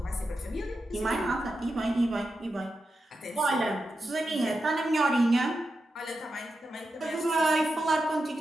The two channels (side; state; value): both; normal; correlation 0.89